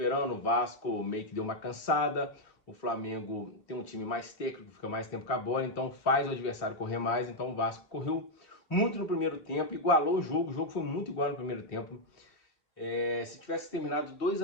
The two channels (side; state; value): right; late; 3.2 ms